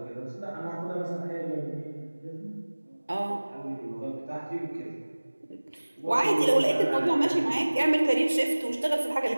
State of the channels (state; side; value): inverted; both; correlation -1.00